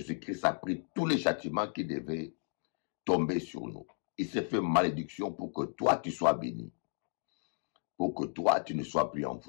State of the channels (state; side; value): silent; right; digital silence